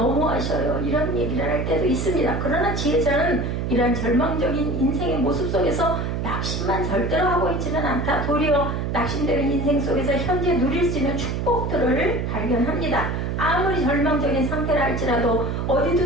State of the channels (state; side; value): noise; right; hum, 1 dB below the sound